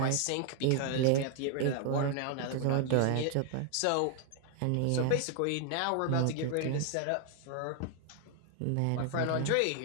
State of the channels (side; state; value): both; different; correlation 0.00